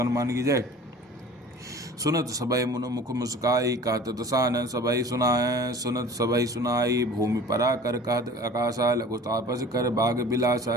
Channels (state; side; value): normal; both; correlation 0.44